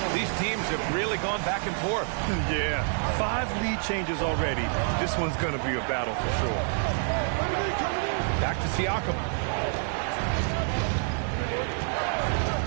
These teams have really gone back and forth. Yeah, 5 lead changes already. This one's going to be a battle for sure. Back to Siakam.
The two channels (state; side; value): silent; left; 60 dB below the other